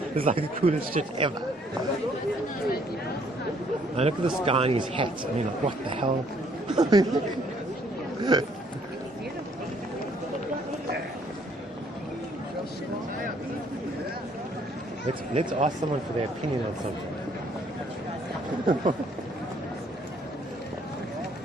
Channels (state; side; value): normal; both; correlation 0.64